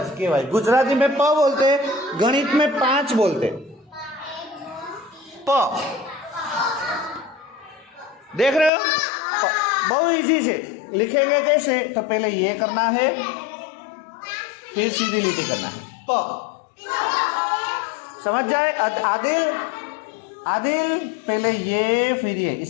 के भाई गुजराती में प बोलते, गणित में 5 बोलते। प देख रहे हो, बहुत इजी से लिखेंगे। कैसे? तो पहले ये करना है, फिर सीधी लिटी करना है। प समझ जाए आदिल? आदिल पहले ये फिर ये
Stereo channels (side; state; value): right; drops out; at 8.7 s